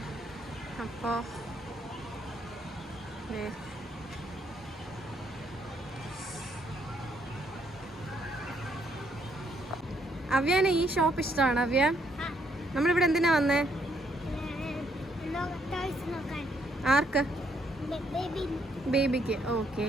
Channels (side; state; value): both; normal; correlation 0.72